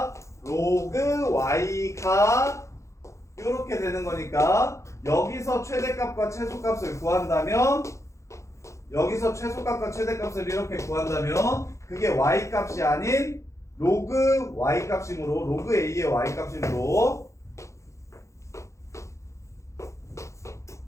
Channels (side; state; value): right; late; 0.14 ms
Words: 로그 y가 이렇게 되는 거니까 여기서 최대값과 최소값을 구한다면 여기서 최소값과 최대값을 이렇게 구한다면 그게 y값이 아닌 로그 y값이므로 로그 a의 y값이므로